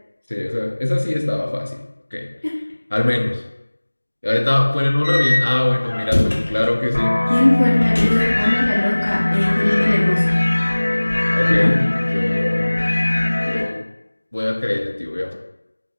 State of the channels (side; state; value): both; inverted; correlation -1.00